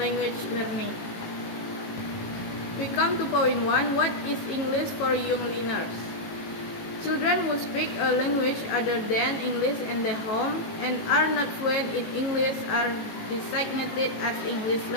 language learning. We come to point 1, what is English for young learners? Children who speak a language other than English in their home and are not fluent in English are designated as English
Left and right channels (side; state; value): right; late; 18 ms